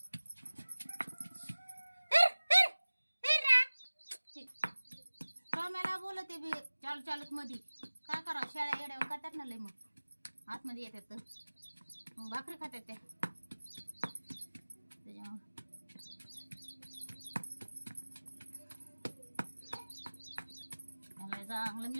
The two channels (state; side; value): inverted; both; correlation -1.00